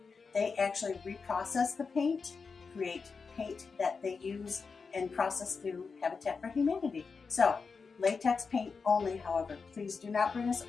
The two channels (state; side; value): quieter; right; 5.0 dB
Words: They actually reprocess the paint, create paint that they use and process through Habitat for Humanity. So, latex paint only, however. Please do not bring us